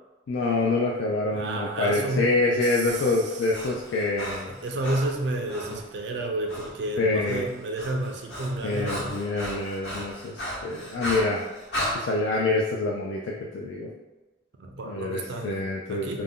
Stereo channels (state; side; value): normal; both; correlation 0.25